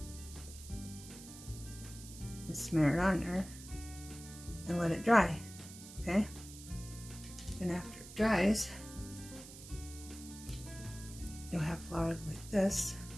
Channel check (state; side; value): noise; right; hiss, 15 dB below the sound